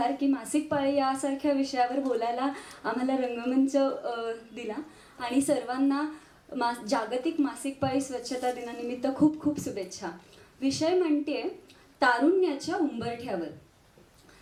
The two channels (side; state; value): both; identical; correlation 1.00